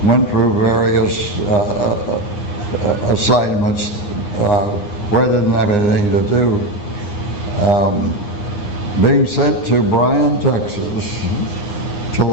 went through various assignments where I didn't have anything to do, being sent to Bryan, Texas to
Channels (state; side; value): late; right; 9.7 ms